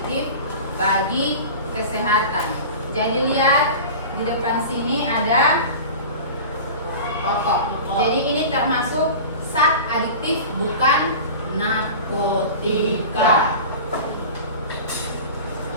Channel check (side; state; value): both; inverted; correlation -0.34